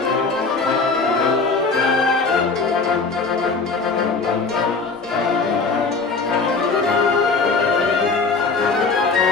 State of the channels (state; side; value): quieter; right; 4.3 dB